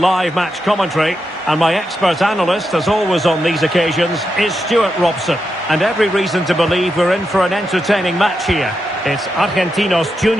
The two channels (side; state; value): both; normal; correlation 0.86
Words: match commentary, and my expert analyst, as always on these occasions, is Stuart Robson. And every reason to believe we're in for an entertaining match here. It's Argentinos